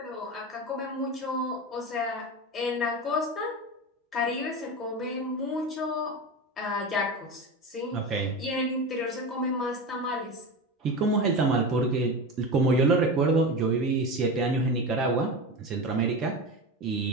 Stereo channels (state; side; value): normal; both; correlation 0.24